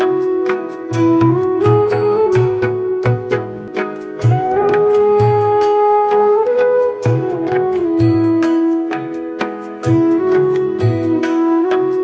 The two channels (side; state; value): both; identical; correlation 1.00